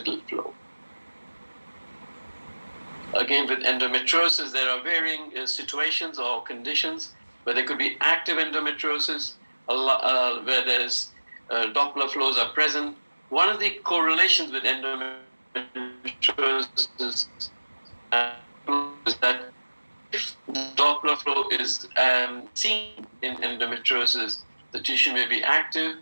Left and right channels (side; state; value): both; inverted; correlation -1.00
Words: flow. Again, with endometriosis, there are varying situations or conditions where there could be active endometriosis, where there's Doppler flows are present. One of the correlations with endometriosis is that if Doppler flow is seen in endometriosis, the tissue may be active